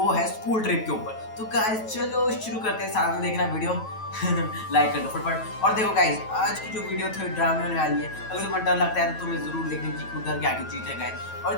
है स्कूल ट्रिप के ऊपर। तो गाइस चलो शुरू करते हैं, साथ में देखना वीडियो लाइक कर दो फटाफट। और देखो गाइस, आज की जो वीडियो थोड़ी ड्रामा होने वाली है। अगर तुम्हें डर लगता है तो तुम्हें जरूर देखने की उधर क्या चीज है गाइस।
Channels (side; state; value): right; late; 9.1 ms